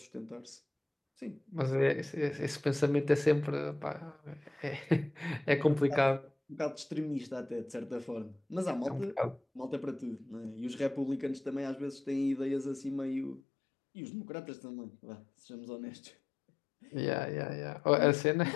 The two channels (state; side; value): drops out; right; at 13.4 s